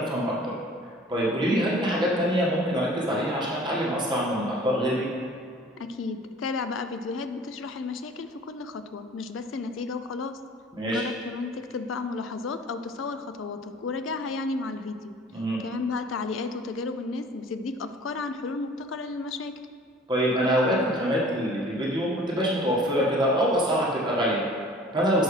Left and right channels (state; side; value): normal; both; correlation 0.48